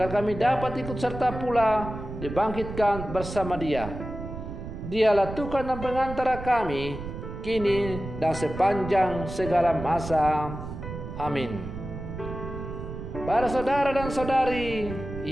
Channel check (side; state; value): right; noise; rumble, 9 dB below the sound